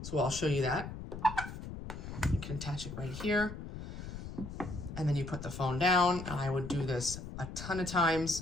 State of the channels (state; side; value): noise; left; rumble, 9 dB below the sound